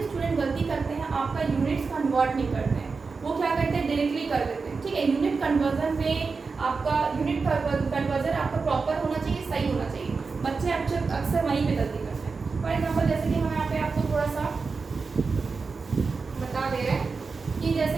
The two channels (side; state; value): left; quieter; 4.6 dB